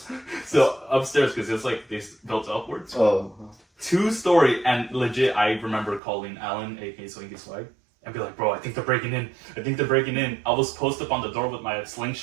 So upstairs, because it's like they built upwards. Oh. 2-story, and legit, I remember calling Alan, aka Swinky Swag, and be like, bro, I think they're breaking in. I was posted up on the door with my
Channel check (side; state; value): left; drops out; at 6.0 s